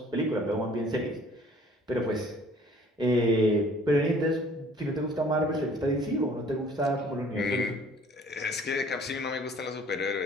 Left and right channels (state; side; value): normal; both; correlation 0.54